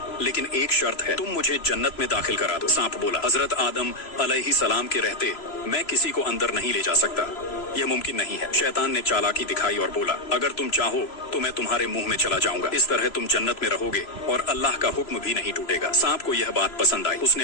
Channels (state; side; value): late; right; 3.0 ms